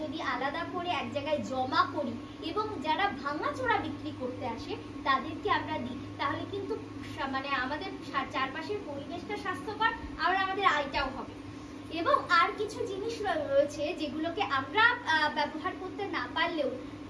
যদি আলাদা করে এক জায়গায় জমা করি এবং যারা ভাঙাচোরা বিক্রি করতে আসে তাদেরকে আমরা দিই, তাহলে কিন্তু মানে আমাদের চারপাশের পরিবেশটা স্বাস্থ্যকর, আর আমাদের আয়টাও হবে। এবং আর কিছু জিনিস রয়েছে যেগুলোকে আমরা ব্যবহার করতে না পারলেও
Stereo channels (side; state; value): both; identical; correlation 1.00